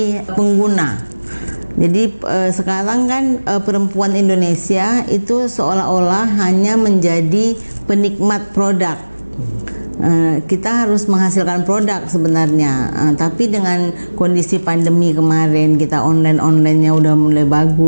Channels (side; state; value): both; inverted; correlation -1.00